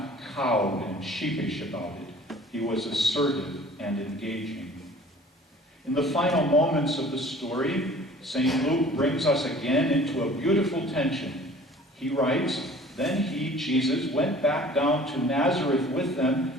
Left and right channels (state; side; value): normal; both; correlation 0.48